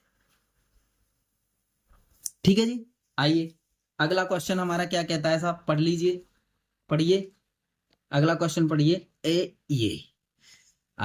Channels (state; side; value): identical; both; correlation 1.00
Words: ठीक है जी। आइए अगला क्वेश्चन हमारा क्या कहता है साहब, पढ़ लीजिए, पढ़िए अगला क्वेश्चन पढ़िए। ये